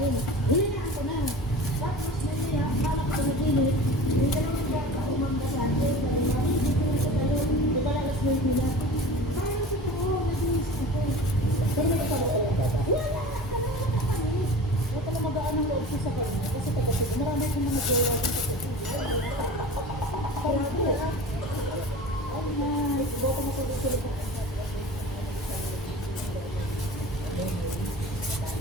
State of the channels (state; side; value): normal; both; correlation 0.37